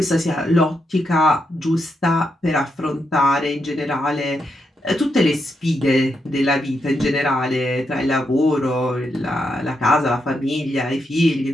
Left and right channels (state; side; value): normal; both; correlation 0.82